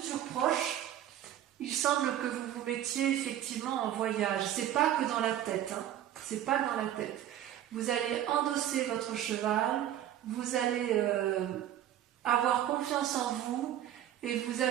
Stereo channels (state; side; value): quieter; left; 11.7 dB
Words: proche, il semble que vous vous mettiez effectivement en voyage. C'est pas que dans la tête, hein. C'est pas dans la tête. Vous allez endosser votre cheval, vous allez avoir confiance en vous et vous